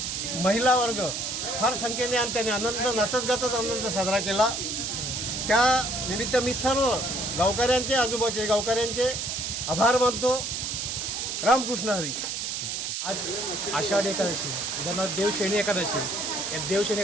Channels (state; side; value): noise; right; hiss, 3 dB below the sound